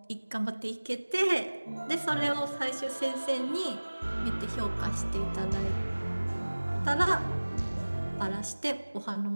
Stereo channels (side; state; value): both; inverted; correlation -1.00